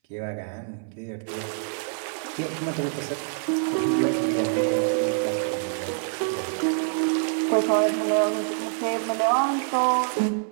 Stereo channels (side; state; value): left; silent; 61 dB below the other